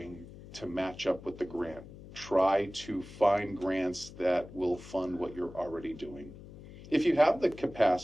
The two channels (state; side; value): noise; left; hum, 16 dB below the sound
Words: to match up with the grant. Try to find grants that will fund what you're already doing. If you have the